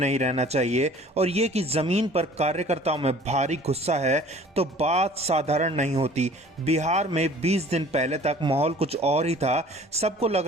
रहना चाहिए और ये कि जमीन पर कार्यकर्ताओं में भारी गुस्सा है, तो बात साधारण नहीं होती। बिहार में 20 दिन पहले तक माहौल कुछ और ही था। सबको लग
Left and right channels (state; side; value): normal; both; correlation 0.49